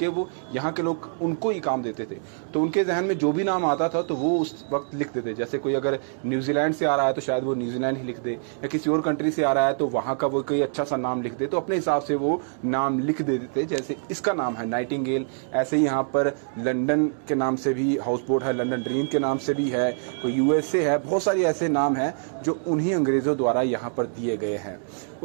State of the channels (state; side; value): silent; left; digital silence